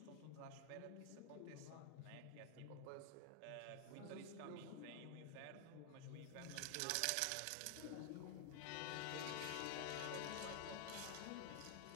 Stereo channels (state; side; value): different; both; correlation 0.00